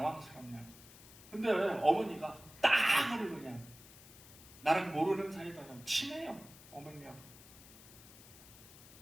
근데 어머니가 딱으로 그냥 나랑 모르는 사이다 친해요. 어머니하고.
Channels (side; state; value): left; noise; hiss, 19 dB below the sound